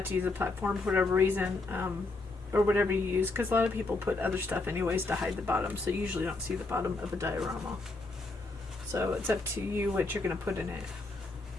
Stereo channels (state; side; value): quieter; right; 3.3 dB